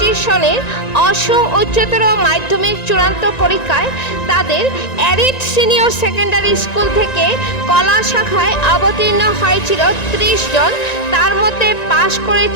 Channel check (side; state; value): right; late; 1.9 ms